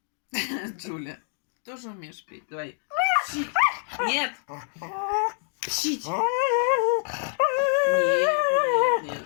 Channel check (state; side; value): silent; right; digital silence